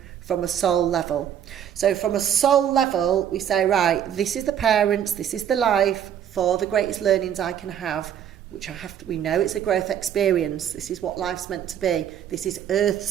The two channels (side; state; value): left; quieter; 9.5 dB